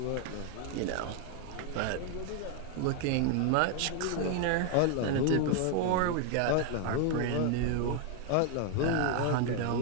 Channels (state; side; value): different; both; correlation 0.00